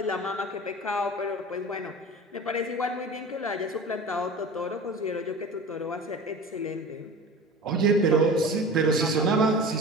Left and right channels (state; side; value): normal; both; correlation 0.36